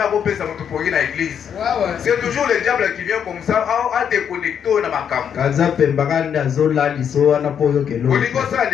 akopesa mtu pongi na église. C'est toujours le diable qui vient comme ça à déconnecter na makambo. Kaza pembakanda zola liso wana poyo kelo. Olingo sa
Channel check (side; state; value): right; quieter; 8.2 dB